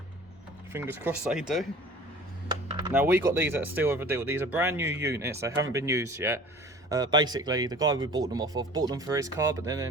Fingers crossed they do. Now we got these at a steal of a deal. These are brand new units, they haven't been used yet. Basically the guy we bought them off of bought them for his car, but then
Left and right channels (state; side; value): normal; both; correlation 0.44